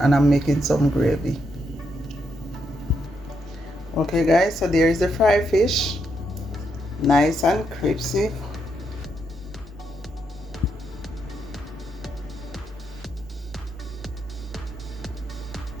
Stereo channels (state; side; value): normal; both; correlation 0.80